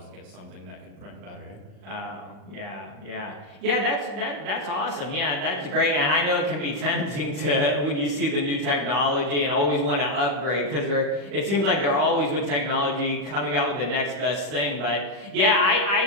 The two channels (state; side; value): late; left; 40 ms